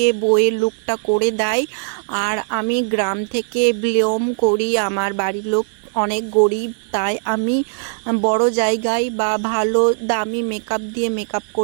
বইয়ের লুকটা করে দেয়। আর আমি গ্রাম থেকে বিলং করি, আমার বাড়ির লোক অনেক গরিব, তাই আমি বড় জায়গায় বা ভালো দামি মেকআপ দিয়ে মেকআপ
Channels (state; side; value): silent; left; 63 dB below the other